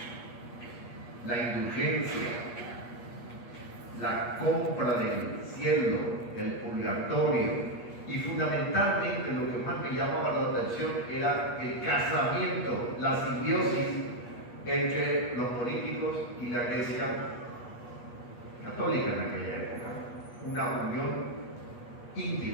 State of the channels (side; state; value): right; late; 8.4 ms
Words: La indulgencia, la compra del cielo, el purgatorio, y fundamentalmente lo que más me llamaba la atención era el casamiento, la simbiosis entre los políticos y la Iglesia católica en aquella época. Una unión